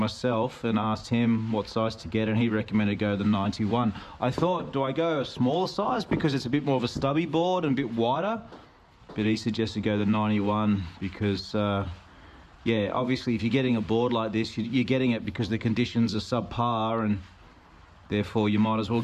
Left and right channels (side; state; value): both; identical; correlation 1.00